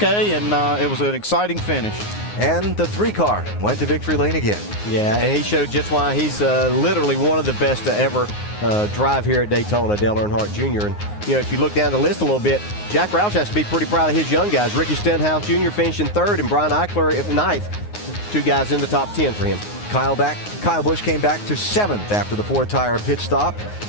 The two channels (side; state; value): right; late; 9.6 ms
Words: and it was an exciting finish. And the 3 car went to victory lane again. Yeah, and he showed just why he's literally one of the best to ever drive here at Daytona, Dale Earnhardt Jr. And, if you look down the list a little bit, Jack Roush has to be pretty proud of his young guys. Ricky Stenhouse Jr. finishing 3rd and Brian Eichler at 9th. 2 guys in the top 10 for him. Kyle Busch came back to 7th after the 4-tire pit stop.